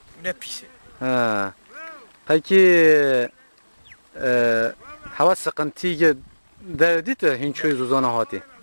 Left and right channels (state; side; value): inverted; both; correlation -1.00